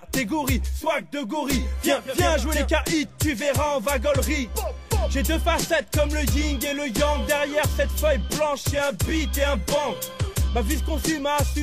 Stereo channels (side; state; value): both; identical; correlation 1.00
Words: swag de gorille. Viens jouer les KI, tu verras en vagolerie. J'ai deux facettes comme le yin et le yang. Derrière cette feuille blanche y'a un beat et un bang. Ma vie se consume à